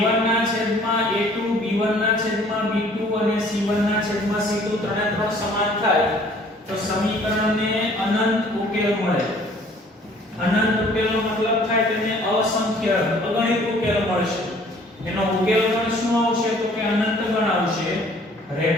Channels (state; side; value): normal; both; correlation 0.56